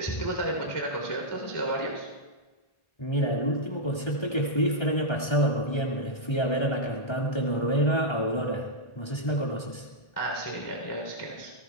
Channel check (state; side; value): late; right; 1.3 ms